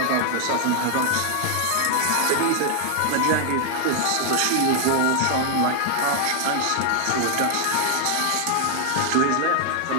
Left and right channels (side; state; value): both; different; correlation 0.00